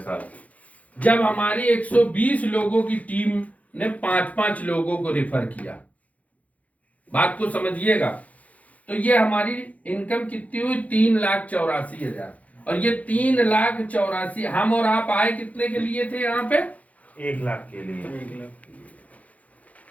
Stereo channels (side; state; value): right; late; 0.070 ms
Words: जब हमारी 120 लोगों की टीम ने 5-5 लोगों को रेफर किया। बात को समझिएगा। तो ये हमारी इनकम कितनी हुई? 3,84,000। और ये 3,84,000 हम और आप आए कितने के लिए थे यहाँ पे? 1 लाख के लिए। 1 लाख।